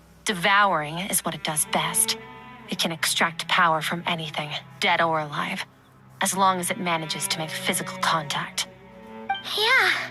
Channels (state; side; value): identical; both; correlation 1.00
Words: Devouring is what it does best. It can extract power from anything, dead or alive, as long as it manages to make physical contact. Yeah.